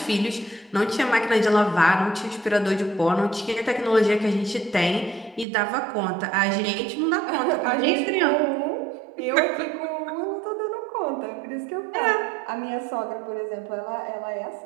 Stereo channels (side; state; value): left; drops out; at 5.5 s